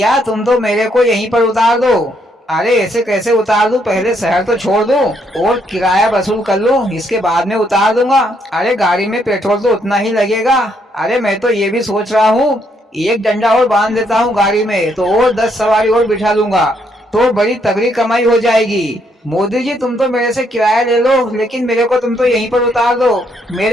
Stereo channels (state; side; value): normal; both; correlation 0.73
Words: तुम तो मेरे को यहीं पर उतार दो। अरे ऐसे कैसे उतार दूं? पहले शहर तो छोड़ दूं और किराया वसूल कर लूं, इसके बाद में उतार दूंगा। अरे गाड़ी में पेट्रोल तो उतना ही लगेगा। अरे मैं तो ये भी सोच रहा हूँ, एक डंडा और बांध देता हूँ गाड़ी में तो और 10 सवारी और बिठा लूंगा, तो बड़ी तगड़ी कमाई हो जाएगी। मोदी जी तुम तो मेरे से किराया ले लो लेकिन मेरे को तुम तो यहीं पर उतार दो।